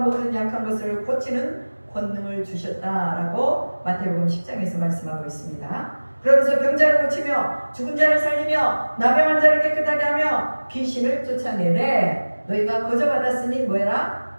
약한 것을 고치는 권능을 주셨다라고 마태복음 10장에서 말씀하고 있습니다. 그러면서 병자를 고치며 죽은 자를 살리며 나병한 자를 깨끗하게 하며 귀신을 쫓아내래 너희가 거저 받았으니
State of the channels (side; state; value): both; inverted; correlation -1.00